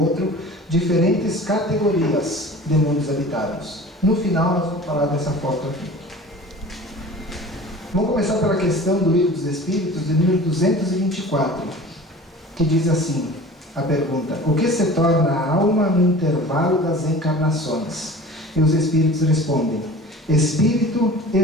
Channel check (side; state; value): both; normal; correlation 0.41